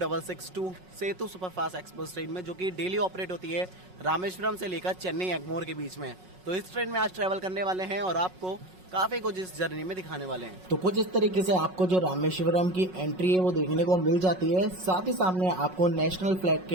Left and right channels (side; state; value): left; late; 5.4 ms